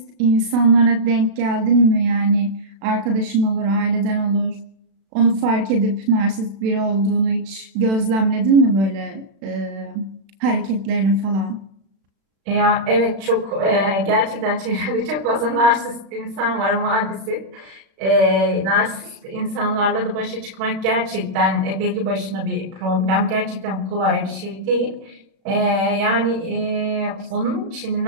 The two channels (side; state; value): left; late; 36 ms